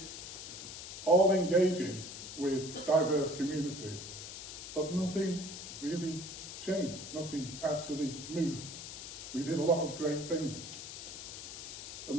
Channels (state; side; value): noise; left; hiss, 9 dB below the sound